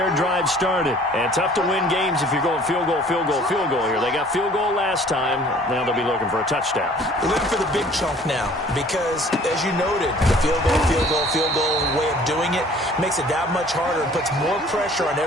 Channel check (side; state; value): both; normal; correlation 0.53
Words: drive started. And tough to win games if you're going field goal, field goal, field goal here. They got field goal last time. Now they'll be looking for a touchdown. They're looking for the big chunk now because, as you noted, the field goal, field goal, field goal way of doing it makes it that much harder and puts more pressure on